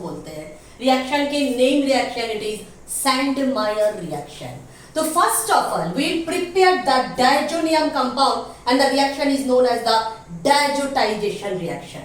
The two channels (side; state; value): both; identical; correlation 1.00